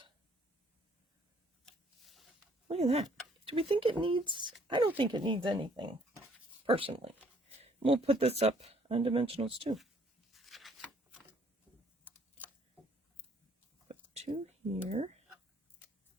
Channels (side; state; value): both; normal; correlation 0.62